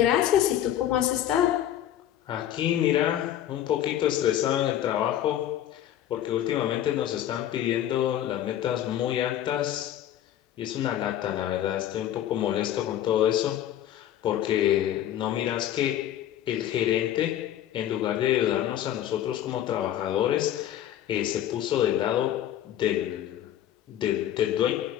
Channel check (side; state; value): right; quieter; 11.6 dB